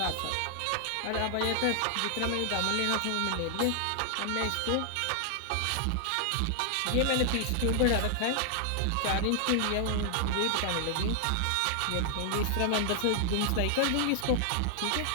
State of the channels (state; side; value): different; both; correlation 0.00